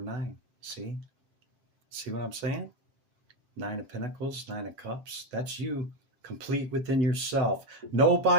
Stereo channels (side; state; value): left; late; 8.0 ms